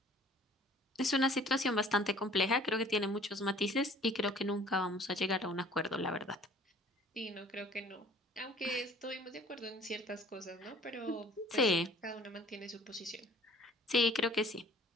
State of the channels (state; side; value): normal; both; correlation 0.52